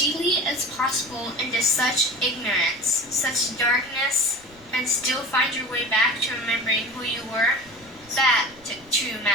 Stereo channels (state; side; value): noise; right; rumble, 26 dB below the sound